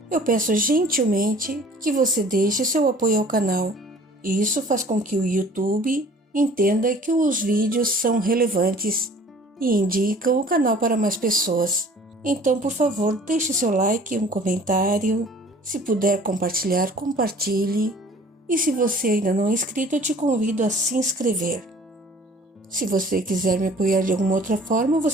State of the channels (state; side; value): normal; both; correlation 0.50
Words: eu peço gentilmente que você deixe seu apoio ao canal. E isso faz com que o YouTube entenda que os vídeos são relevantes e indicam o canal para mais pessoas. Então, por favor, deixe seu like, um comentário. Se puder compartilhar, compartilhe. E se você ainda não é inscrito, eu te convido a se inscrever. Se você quiser me apoiar de alguma outra forma,